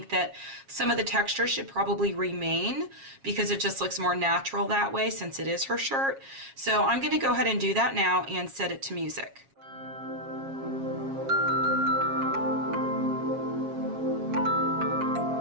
that some of the texture should probably remain because it just looks more natural that way since it is her shirt. So I'm going to go ahead and do that now and set it to music.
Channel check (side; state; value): left; late; 7.4 ms